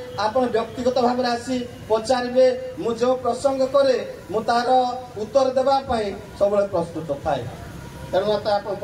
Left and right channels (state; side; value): identical; both; correlation 1.00